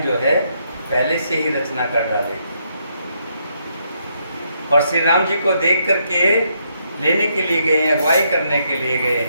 जो है पहले से ही रचना कर डाली और श्री राम जी को देख करके लेने के लिए गए हैं, अगुवाई करने के लिए गए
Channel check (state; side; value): inverted; both; correlation -0.76